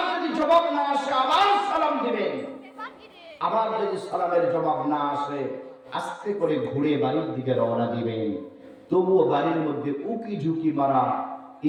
যদি জবাব না আসে আবার সালাম দিবেন, আবার যদি সালামের জবাব না আসে আস্তে করে ঘুরে বাড়ির দিকে রওনা দিবেন। তবুও বাড়ির মধ্যে উকি ঝুঁকি মারা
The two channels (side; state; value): both; identical; correlation 1.00